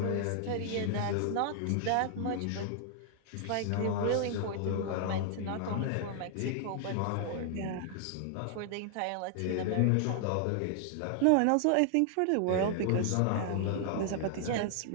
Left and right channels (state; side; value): different; both; correlation 0.00